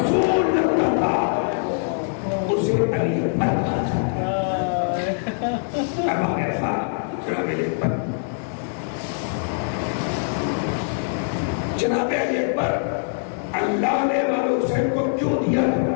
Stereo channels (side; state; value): right; silent; digital silence